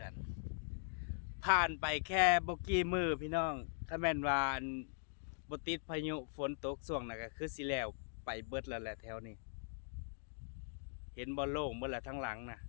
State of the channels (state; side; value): silent; right; digital silence